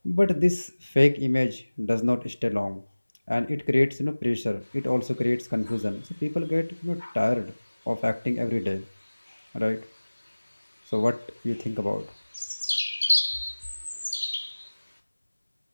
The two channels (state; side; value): inverted; both; correlation -1.00